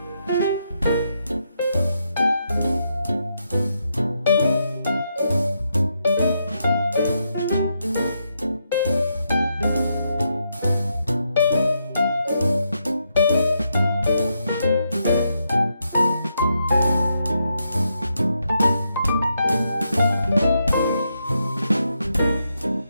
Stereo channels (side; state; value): both; inverted; correlation -0.81